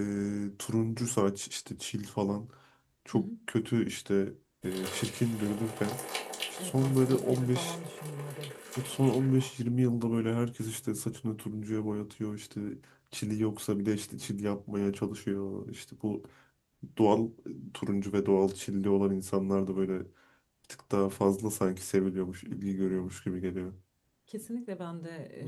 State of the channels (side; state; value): both; identical; correlation 1.00